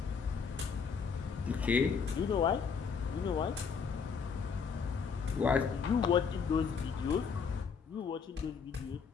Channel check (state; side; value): quieter; right; 6.0 dB